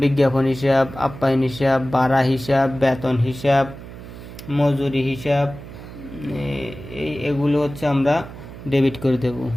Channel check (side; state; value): right; noise; hum, 14 dB below the sound